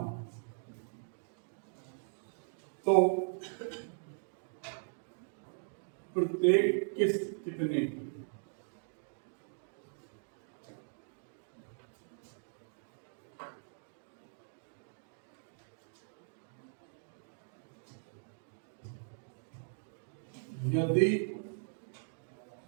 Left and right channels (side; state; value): left; silent; digital silence